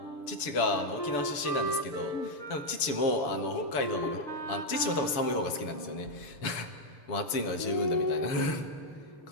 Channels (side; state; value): right; late; 7.1 ms